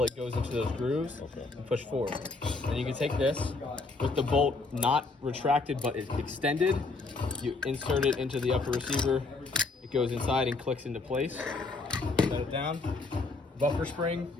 it goes into those grooves and push forward. And you can take this with the bolt not retracted but extended. You insert it into the upper receiver. It goes inside and clicks into place. Set it down. Buffer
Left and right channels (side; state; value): right; quieter; 3.6 dB